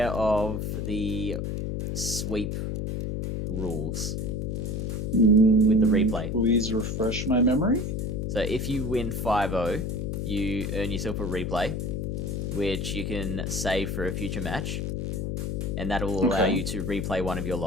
of the sweep rules with the replay? Please refresh my memory. So if you win 5-0, you earn yourself a replay, which you can save for a future match, and that will allow Okay. you to replay one of your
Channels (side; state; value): left; noise; hum, 2 dB below the sound